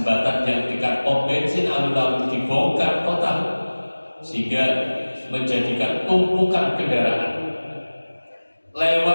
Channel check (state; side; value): inverted; both; correlation -1.00